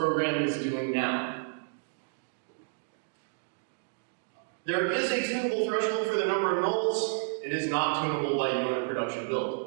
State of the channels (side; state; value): left; silent; digital silence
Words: is doing now. There is a tunable threshold for the number of nulls. It is not tunable by you in a production